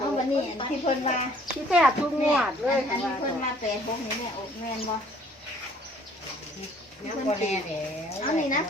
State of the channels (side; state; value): both; normal; correlation 0.58